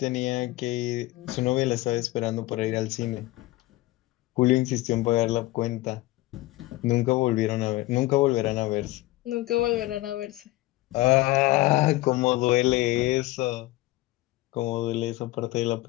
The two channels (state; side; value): quieter; right; 18.7 dB